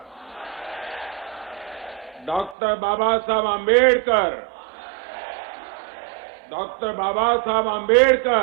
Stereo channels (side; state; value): left; drops out; at 2.6 s